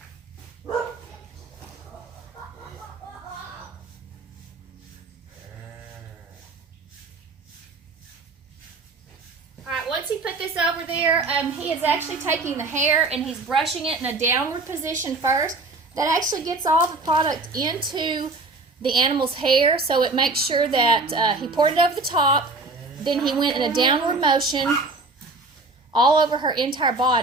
Alright, once he put this over there, he is actually taking the hair and he's brushing it in a downward position first. That actually gets all the product into the animal's hair, so it makes sure that he poured it over the top, then he went in a downward motion all over her entire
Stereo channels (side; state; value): left; quieter; 3.5 dB